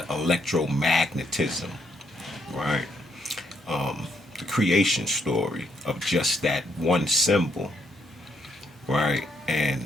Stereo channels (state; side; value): normal; both; correlation 0.75